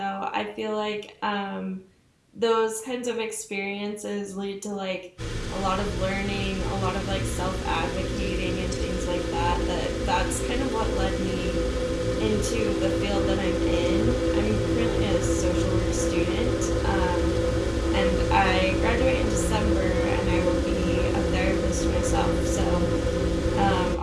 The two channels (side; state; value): both; identical; correlation 1.00